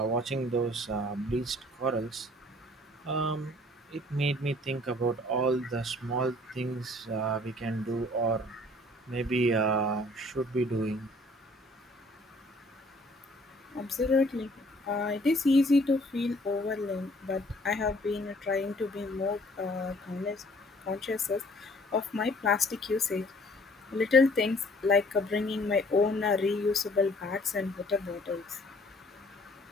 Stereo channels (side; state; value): both; normal; correlation 0.57